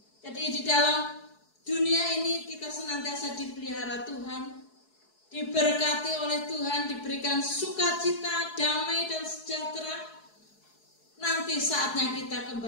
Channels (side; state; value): right; late; 4.7 ms